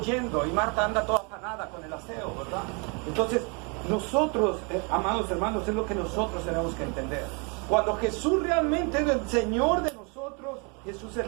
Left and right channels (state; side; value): quieter; left; 33.6 dB